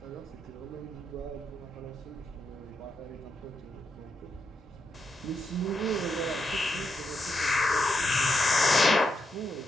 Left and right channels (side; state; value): both; normal; correlation 0.83